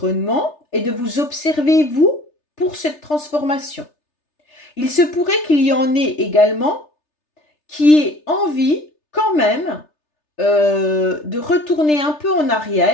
et de vous observer, vous, pour cette transformation. Il se pourrait qu'il y en ait également qui aient envie, quand même, de retourner un peu en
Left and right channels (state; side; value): late; right; 3.3 ms